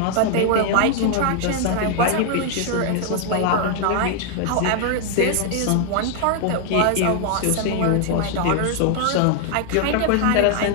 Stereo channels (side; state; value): both; different; correlation 0.00